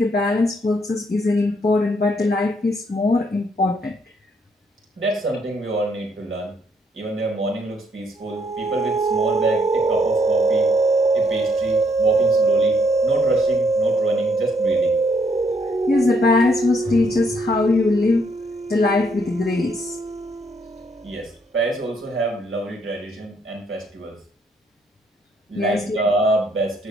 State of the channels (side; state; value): both; normal; correlation 0.71